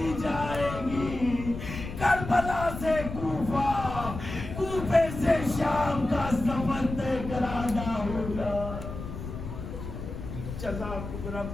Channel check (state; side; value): noise; left; rumble, 8 dB below the sound